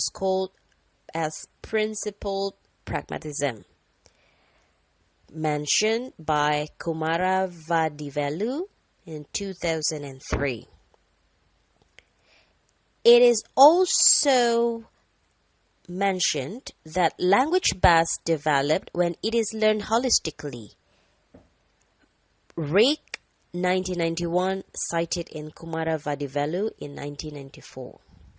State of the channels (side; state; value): both; identical; correlation 1.00